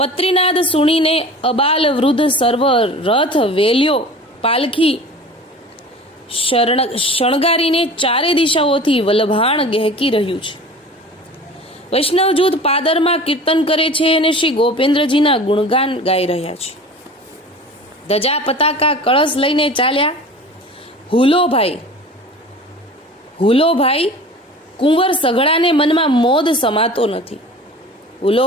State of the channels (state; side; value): normal; both; correlation 0.39